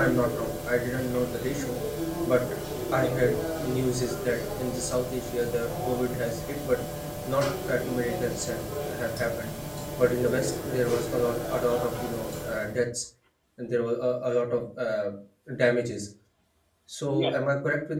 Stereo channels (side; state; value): both; identical; correlation 1.00